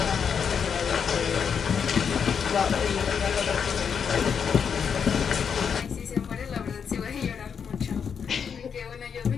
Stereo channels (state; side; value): quieter; right; 6.9 dB